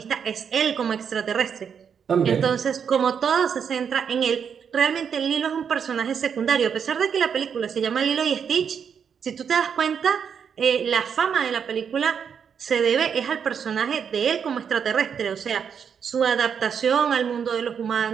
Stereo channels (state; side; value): quieter; left; 7.2 dB